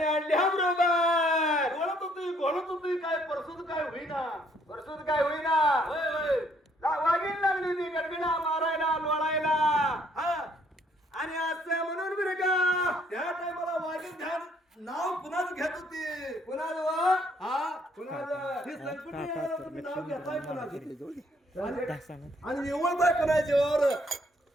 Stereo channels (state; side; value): normal; both; correlation 0.66